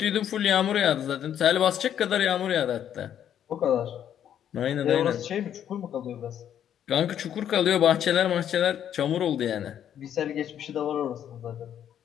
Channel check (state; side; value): quieter; right; 9.8 dB